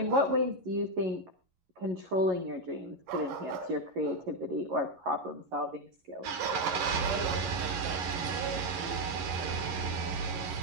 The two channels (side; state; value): left; late; 11 ms